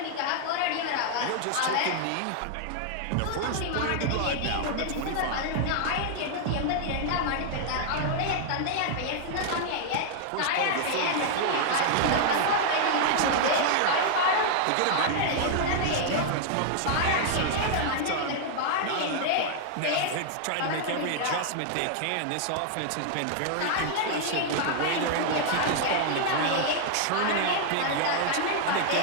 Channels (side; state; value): both; different; correlation -0.01